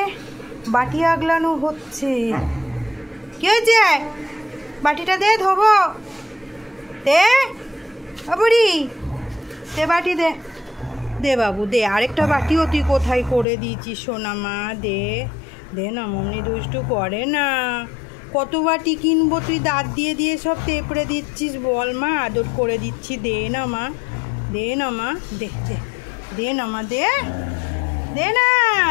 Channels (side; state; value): right; drops out; at 13.5 s